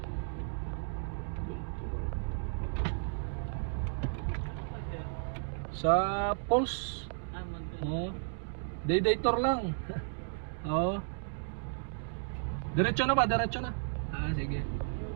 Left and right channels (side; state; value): left; silent; digital silence